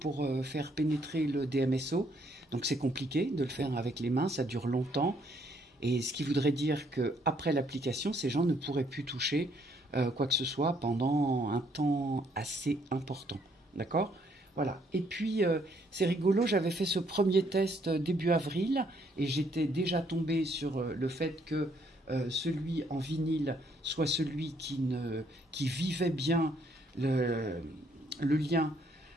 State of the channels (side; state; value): both; normal; correlation 0.68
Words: faire pénétrer le DMSO. Donc c'est compliqué de le faire avec les mains, ça dure longtemps. Et ce qui voudrait dire qu'après l'application, ces gens ne pourraient plus toucher quoi que ce soit pendant un temps assez important. D'accord? Voilà. Et puis, c'est rigolo, j'avais fait ce premier test début avril et j'étais déjà tombée sur le fait que celui en vinyle soit celui qui vivait bien le lien